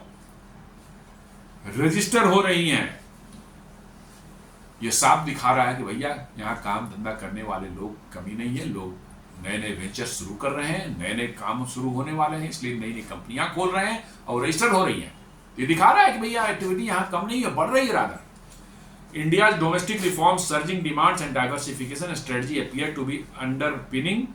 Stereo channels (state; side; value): identical; both; correlation 1.00